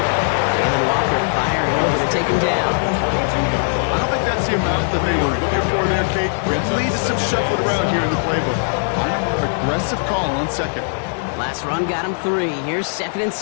Walker firing over to take him down. I don't think that's the amount that they were looking for there, Kate. Could lead to some shuffling around here in the playbook. Find a more aggressive call on 2nd. Last run got him 3. Here's 2nd and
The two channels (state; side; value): silent; right; 66 dB below the other